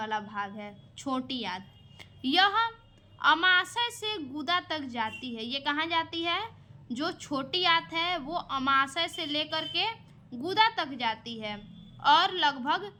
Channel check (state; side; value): identical; both; correlation 1.00